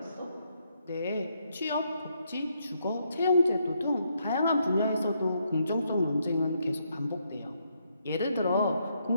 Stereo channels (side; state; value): both; inverted; correlation -0.76